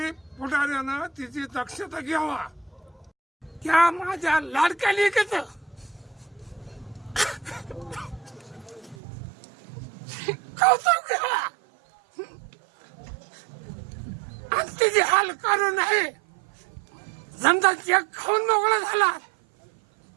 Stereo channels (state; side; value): drops out; left; at 9.0 s